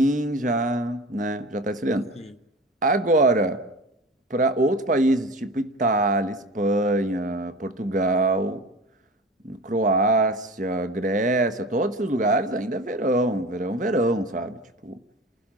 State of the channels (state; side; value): normal; both; correlation 0.34